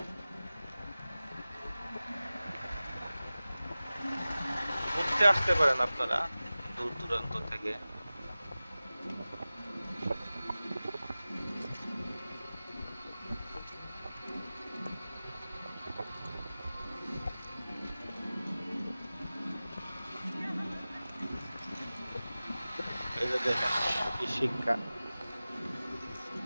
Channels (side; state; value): both; inverted; correlation -0.97